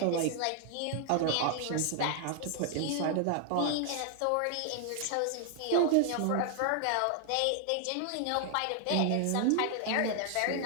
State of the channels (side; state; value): both; different; correlation 0.00